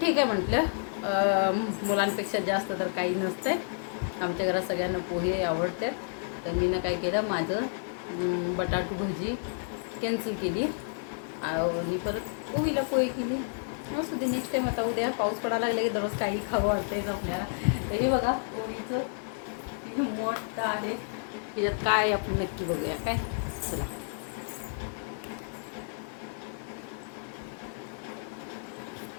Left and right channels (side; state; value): right; silent; digital silence